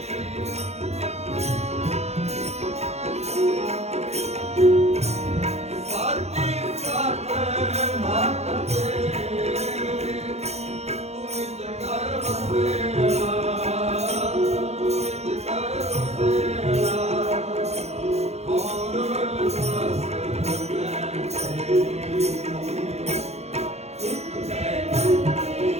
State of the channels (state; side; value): late; left; 0.31 ms